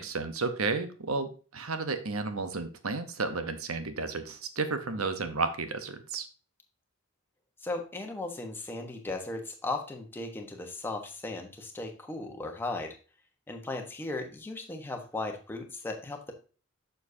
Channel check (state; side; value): normal; both; correlation 0.10